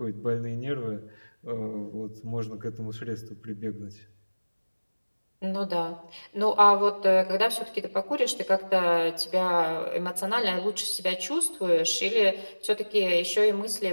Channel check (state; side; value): inverted; both; correlation -1.00